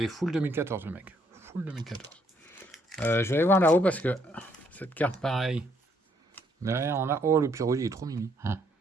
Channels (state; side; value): normal; both; correlation 0.70